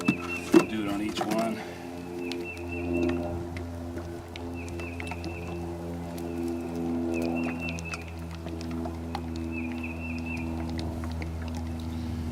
Do it on each one.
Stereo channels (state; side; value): identical; both; correlation 1.00